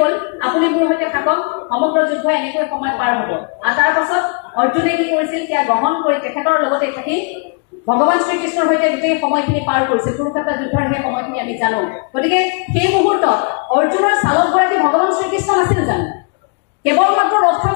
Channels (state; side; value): quieter; right; 36.2 dB